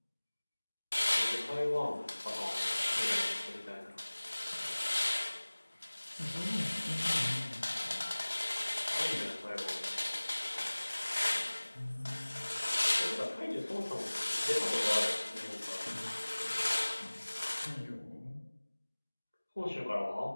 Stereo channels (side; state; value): both; inverted; correlation -1.00